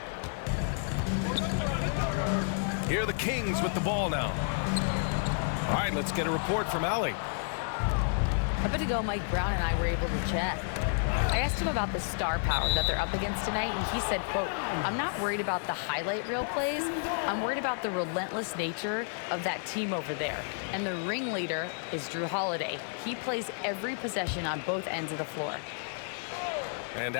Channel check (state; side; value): silent; right; digital silence